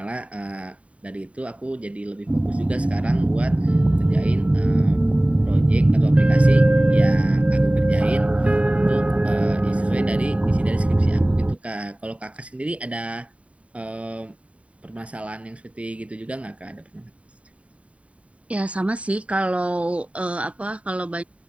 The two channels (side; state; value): left; late; 0.065 ms